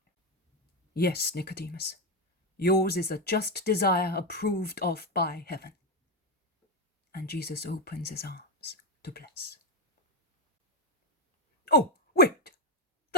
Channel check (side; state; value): both; normal; correlation 0.06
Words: Yes, Nicodemus, yours is a just desire approved of by heaven. And Jesus opens his arms to bless. Oh, wait,